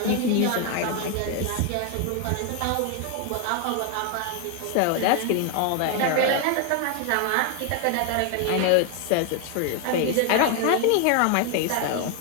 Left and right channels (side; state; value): both; different; correlation 0.01